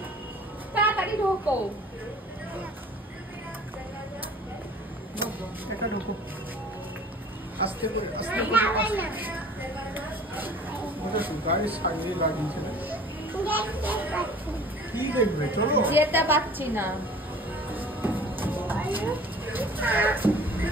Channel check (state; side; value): normal; both; correlation 0.47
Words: তাড়াতাড়ি ঢোকো। এটা ঢোকো, আস্তে করে আস্তে করে। গাড়ির সাইডে দাঁড়িয়েছে, কি দেখবে? চলো। যেতে পারছি না।